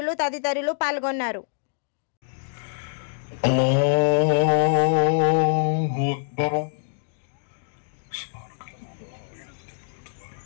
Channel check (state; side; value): silent; right; digital silence